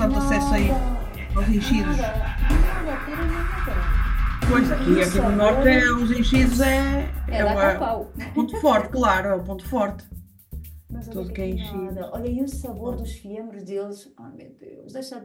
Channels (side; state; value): both; identical; correlation 1.00